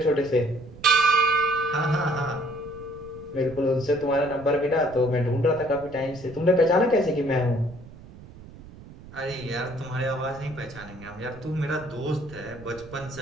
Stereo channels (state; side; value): noise; right; rumble, 18 dB below the sound